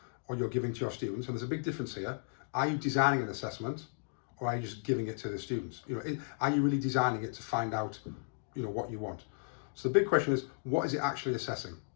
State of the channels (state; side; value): silent; right; digital silence